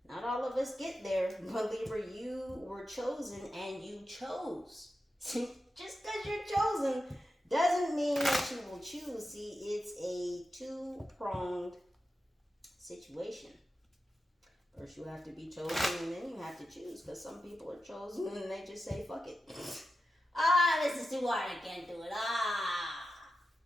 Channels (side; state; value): both; normal; correlation 0.91